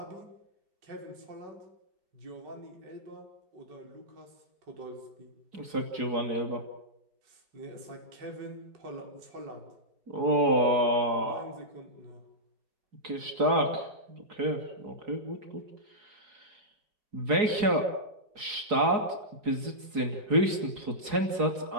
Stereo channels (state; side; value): late; left; 4.8 ms